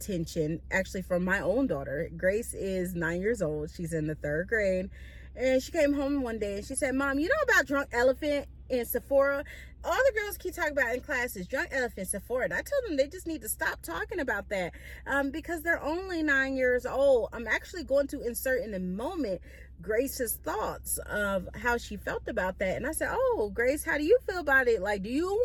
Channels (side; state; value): both; identical; correlation 1.00